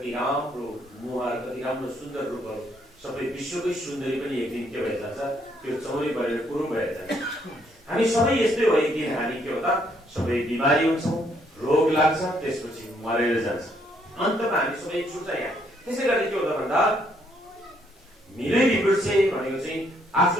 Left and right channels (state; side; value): normal; both; correlation 0.70